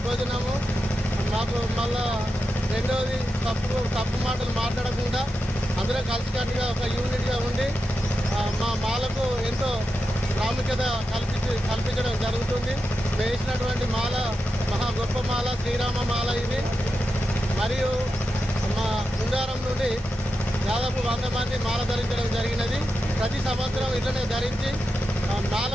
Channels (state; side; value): normal; both; correlation 0.89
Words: భోజనము, మాకు మళ్ళా రెండవది తప్పు మాటలు మాట్లాడకుండా అందరూ కలిసికట్టుగా ఒక యూనిట్గా ఉండి మా మాలకు ఎంతో ప్రాముఖ్యత కల్పించడం జరుగుతుంది. వేసినటువంటి మాల మహా గొప్ప మాల, శ్రీరామ మాల ఇది. మరియు మా కుండారం నుండి దాదాపు 100 మంది మాల ధరించడం జరిగినది. ప్రతి సంవత్సరం ఇట్లనే ధరించి